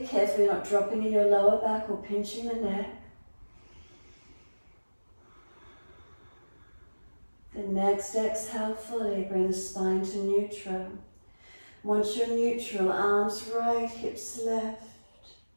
Carefully not dropping in your lower back or pinching the neck. The next exhale fully, bring the spine to neutral. Once you're neutral, arms right, hips left.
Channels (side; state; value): both; inverted; correlation -1.00